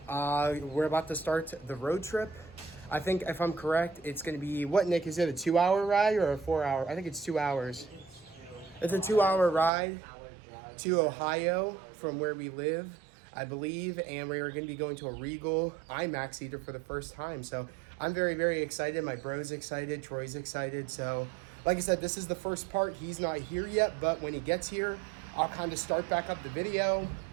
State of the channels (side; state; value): left; drops out; at 9.7 s